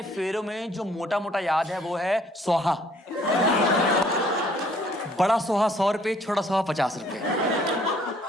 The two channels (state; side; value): normal; both; correlation 0.61